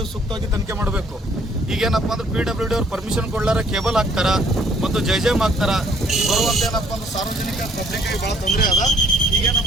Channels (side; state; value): both; normal; correlation 0.62